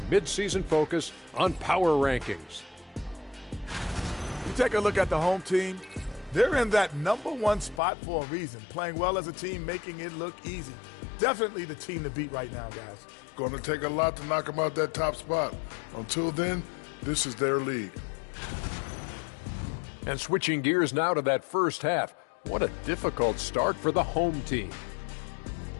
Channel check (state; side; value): drops out; right; at 7.8 s